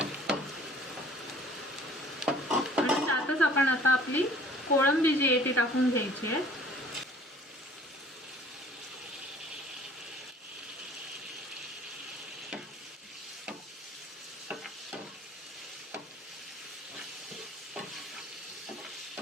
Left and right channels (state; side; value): normal; both; correlation 0.53